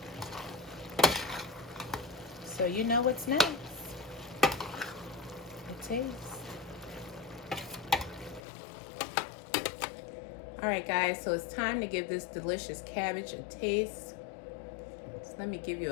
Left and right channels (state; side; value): drops out; right; at 8.4 s